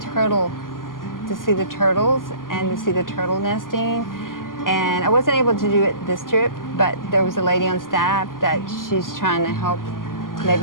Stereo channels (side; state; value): right; late; 0.91 ms